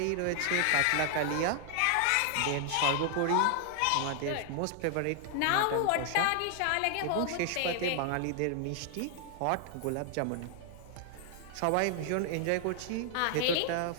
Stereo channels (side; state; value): both; different; correlation 0.00